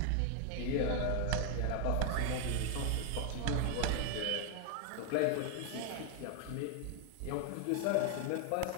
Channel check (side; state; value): both; different; correlation 0.00